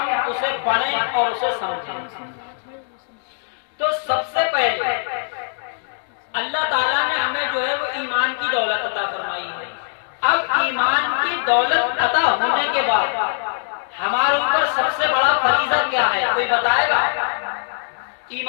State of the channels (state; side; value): silent; right; digital silence